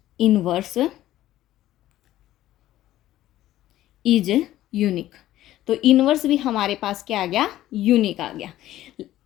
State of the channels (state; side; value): quieter; right; 14.2 dB